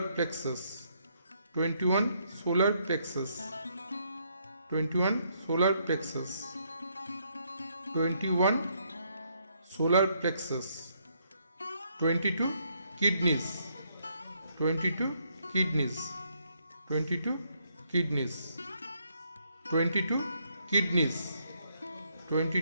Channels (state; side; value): inverted; both; correlation -0.73